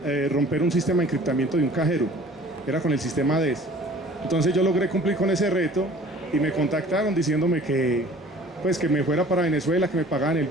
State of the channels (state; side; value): normal; both; correlation 0.49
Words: romper un sistema de encriptamiento de un cajero. Era con el sistema DES. Entonces yo logré cumplir con ese reto y me contactaron diciéndome que me fuera para Venezuela, que me pagaban el